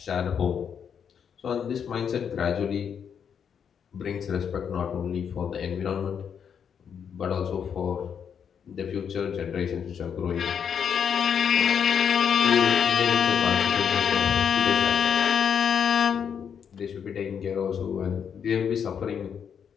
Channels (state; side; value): quieter; right; 7.6 dB